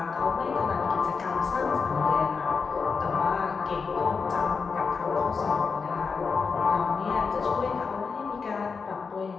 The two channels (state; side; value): quieter; right; 5.2 dB